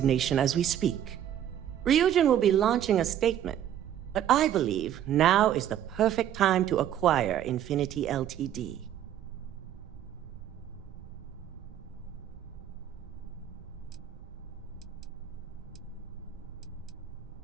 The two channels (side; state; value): left; quieter; 10.6 dB